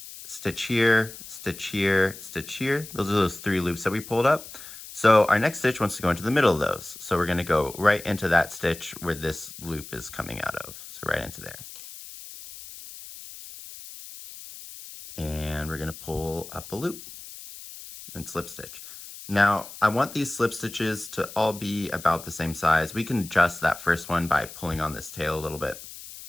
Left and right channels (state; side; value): noise; left; hiss, 14 dB below the sound